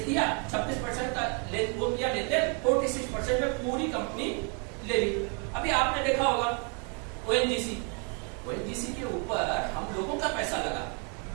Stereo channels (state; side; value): quieter; left; 37.1 dB